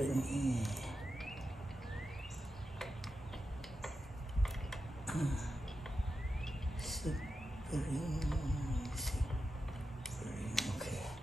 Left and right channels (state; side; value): normal; both; correlation 0.90